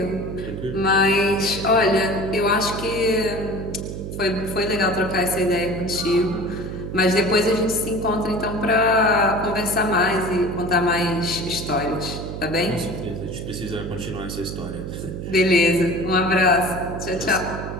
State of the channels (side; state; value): right; noise; hum, 7 dB below the sound